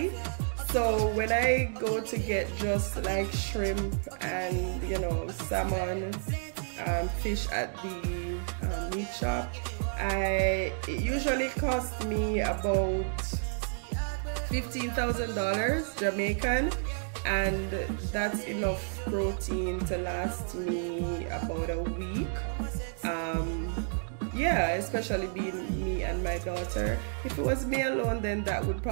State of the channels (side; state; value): left; silent; digital silence